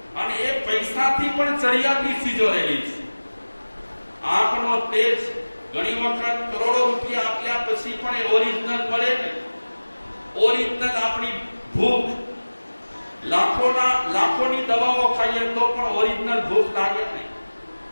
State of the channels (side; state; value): both; inverted; correlation -1.00